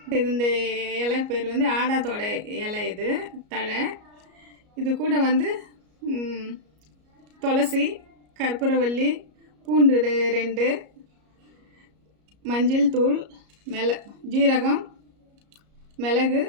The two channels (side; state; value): left; late; 33 ms